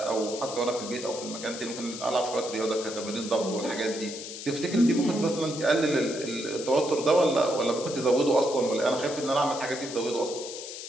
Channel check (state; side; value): noise; left; hiss, 10 dB below the sound